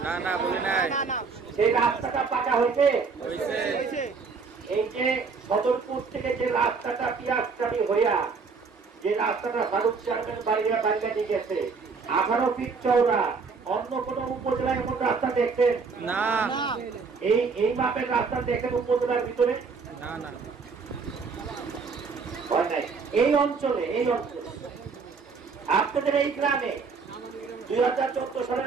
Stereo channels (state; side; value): quieter; left; 4.9 dB